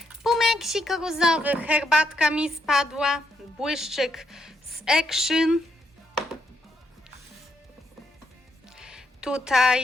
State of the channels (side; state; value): both; normal; correlation 0.77